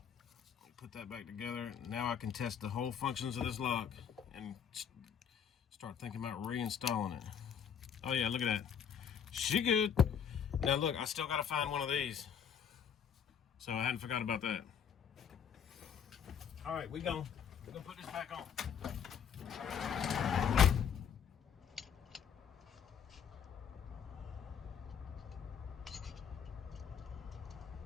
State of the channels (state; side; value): quieter; right; 7.7 dB